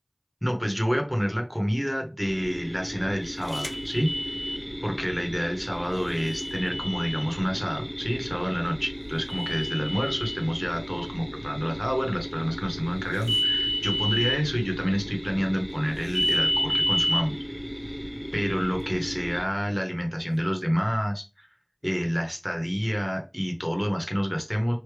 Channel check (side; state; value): both; identical; correlation 1.00